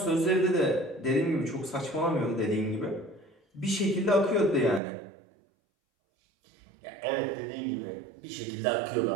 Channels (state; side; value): drops out; left; at 4.8 s